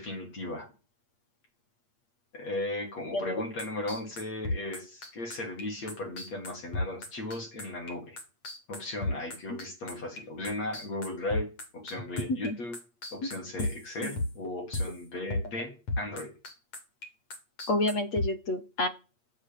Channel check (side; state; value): right; late; 8.5 ms